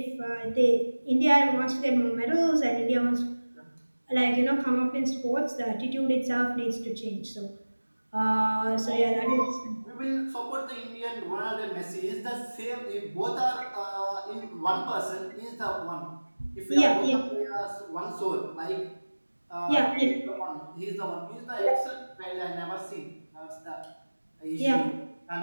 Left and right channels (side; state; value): both; inverted; correlation -1.00